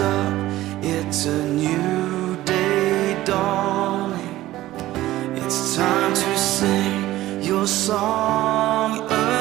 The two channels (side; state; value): left; quieter; 15.7 dB